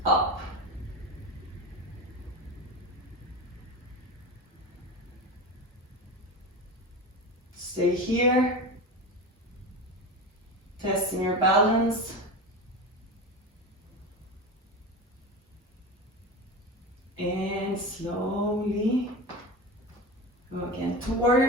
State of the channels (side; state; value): both; normal; correlation 0.25